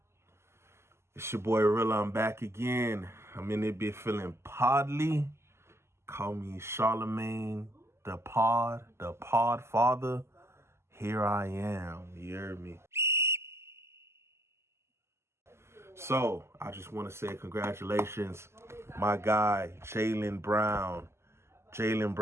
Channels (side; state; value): left; late; 0.13 ms